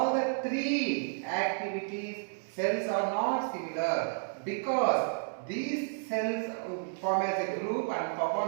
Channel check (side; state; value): left; silent; digital silence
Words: the three activities cells are not similar because these cells form as a group and